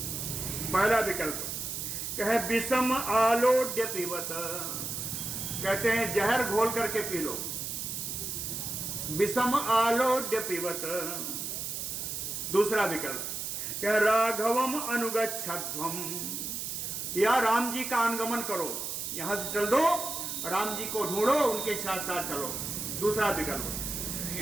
पहला विकल्प कहे विषम आलोड्य पीवत, कहते हैं जहर घोल करके पी लो। विषम आलोड्य पीवत। दूसरा विकल्प कह राघवम अनुगच्छध्वम, या राम जी का अनुगमन करो, यहां से चल दो, राम जी को ढूंढो, उनके साथ साथ चलो। दूसरा विकल्प।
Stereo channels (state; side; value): noise; right; hiss, 4 dB below the sound